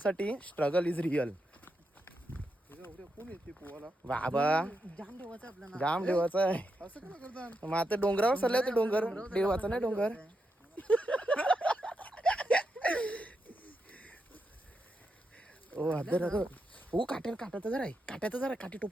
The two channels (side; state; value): both; normal; correlation 0.84